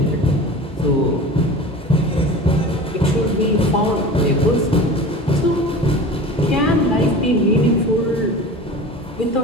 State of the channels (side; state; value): both; normal; correlation 0.35